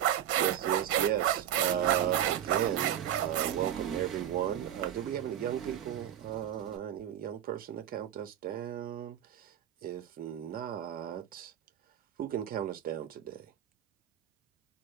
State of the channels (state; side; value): quieter; left; 10.7 dB